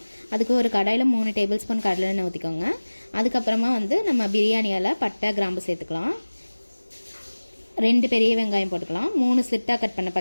அதுக்கு ஒரு கடாயில் 3 டேபிள் ஸ்பூன் கடலை எண்ணெய் ஊற்றிக்கோங்க. அதுக்கப்புறமா நம்ம பிரியாணியால் பட்டை கிராம்பு சேர்த்துக்கலாம். 2 பெரிய வெங்காயம் போட்டுக்கலாம். 3 ஸ்லிட்டாக கட் பண்ண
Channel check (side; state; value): both; inverted; correlation -1.00